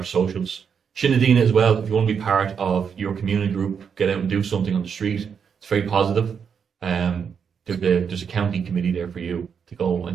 socials. Shinadina as well, if you want to be part of your community group, get out and do something on the street. It's very positive. There's a county committee there for you to go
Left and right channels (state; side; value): quieter; left; 6.9 dB